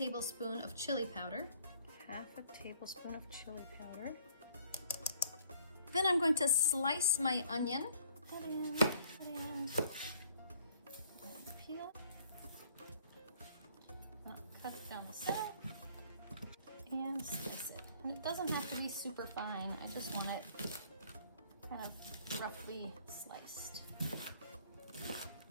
of chili powder. Half a tablespoon of chili powder. Then I'm going to slice my onion. Put in. Peel. Cut it down the center. And slice it. And it doesn't have to be super fine. I just want it kind of roughly sliced.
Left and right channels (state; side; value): inverted; both; correlation -0.60